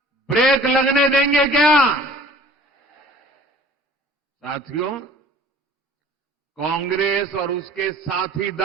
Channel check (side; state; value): both; normal; correlation 0.48